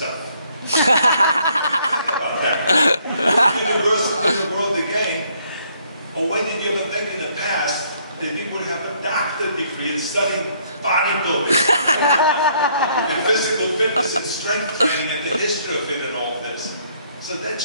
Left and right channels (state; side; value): inverted; both; correlation -0.67